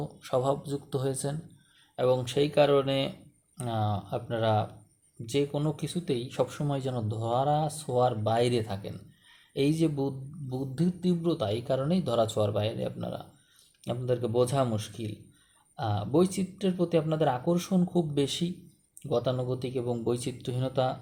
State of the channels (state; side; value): identical; both; correlation 1.00